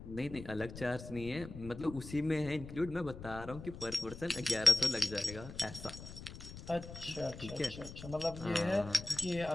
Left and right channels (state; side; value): noise; left; rumble, 12 dB below the sound